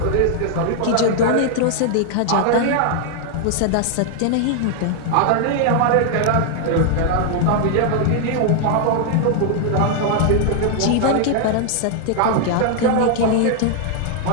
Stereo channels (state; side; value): different; both; correlation 0.00